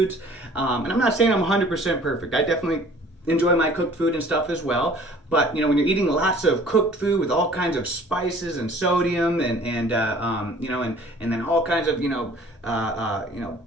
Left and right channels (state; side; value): normal; both; correlation 0.51